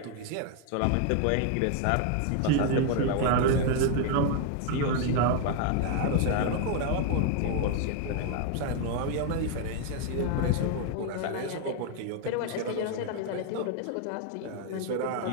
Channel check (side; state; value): both; different; correlation 0.00